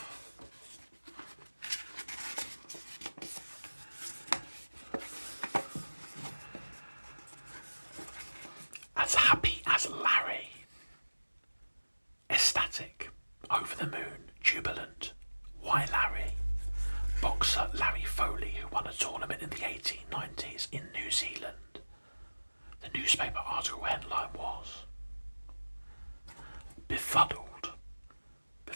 As happy as Larry. Ecstatic, over the moon, jubilant. Why Larry? Boxer Larry Foley, who won a tournament in the 1890s in New Zealand. The newspaper article headline was Befuddled.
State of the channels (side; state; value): both; inverted; correlation -1.00